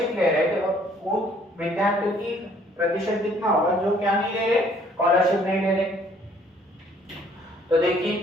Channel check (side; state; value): both; normal; correlation 0.60